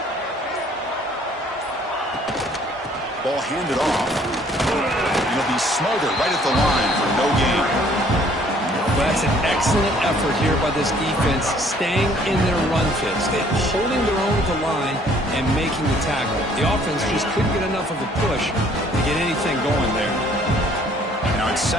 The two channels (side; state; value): both; normal; correlation 0.59